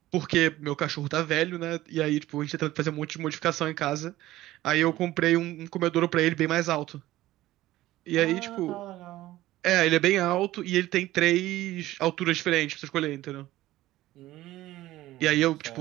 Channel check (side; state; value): left; quieter; 15.9 dB